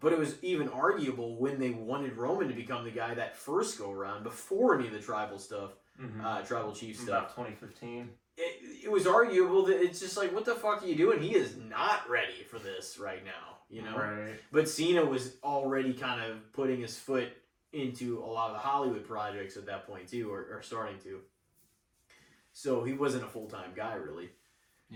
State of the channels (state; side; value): identical; both; correlation 1.00